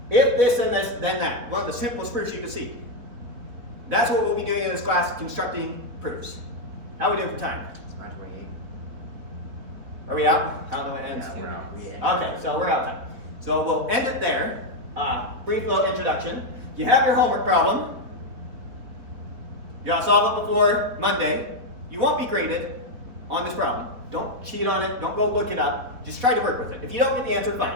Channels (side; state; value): left; late; 4.3 ms